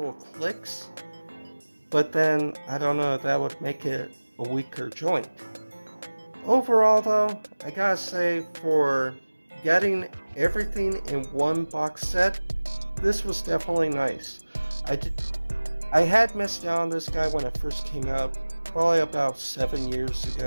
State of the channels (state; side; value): inverted; both; correlation -1.00